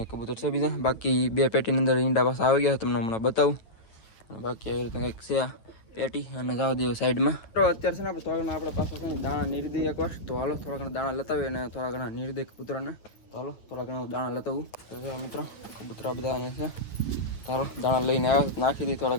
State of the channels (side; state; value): right; late; 9.2 ms